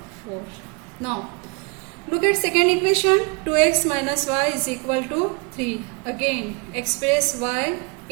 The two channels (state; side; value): quieter; left; 30.4 dB